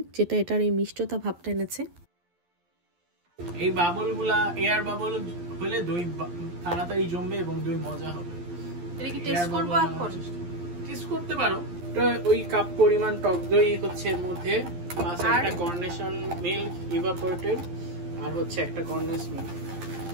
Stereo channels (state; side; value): late; left; 11 ms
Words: যেটা এটার এই মিষ্টতা ভাবটা এনেছে। এই বাবলগুলা এয়ার বাবল হলে দই তাড়াতাড়ি জমবে এবং দই মজা হবে। এটা কি টেস্ট করব এখন? টেস্ট করতে পারো। ওই কাপ পরিমাণ টক দই হচ্ছে এর মধ্যে, প্লাস একটা কর্নেশন মিল্ক ইভাপোরেটেড, আর হচ্ছে একটা কর্নেস মিল্ক।